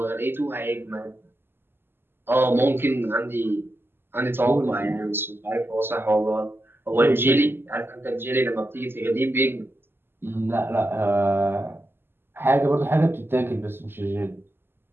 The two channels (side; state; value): left; late; 0.11 ms